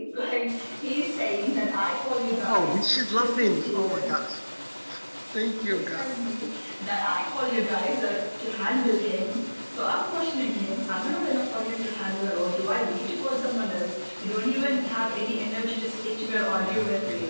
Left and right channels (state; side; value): inverted; both; correlation -1.00